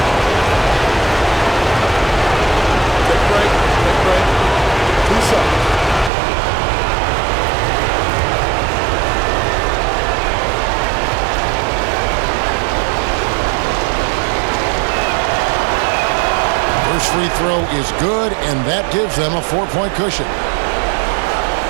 Free throw is good, and that gives them a 4-point cushion.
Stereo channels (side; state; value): left; drops out; at 6.1 s